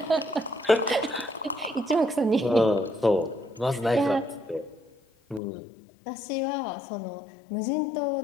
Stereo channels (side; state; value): right; drops out; at 5.4 s